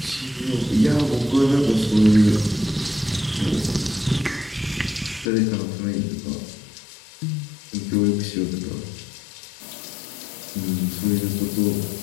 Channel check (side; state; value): right; drops out; at 5.3 s